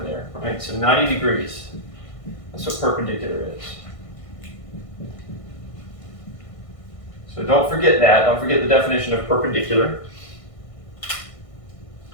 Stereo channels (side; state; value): right; late; 1.6 ms